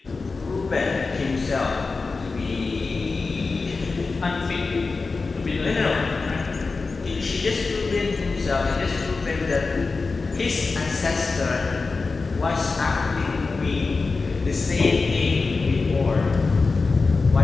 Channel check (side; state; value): right; quieter; 4.1 dB